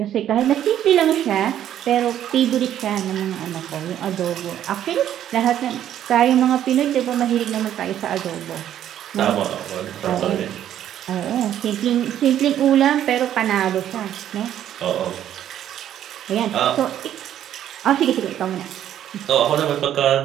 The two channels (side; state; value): left; quieter; 11.0 dB